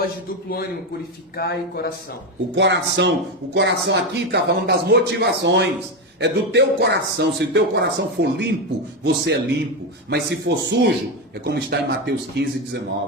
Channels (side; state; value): both; normal; correlation 0.12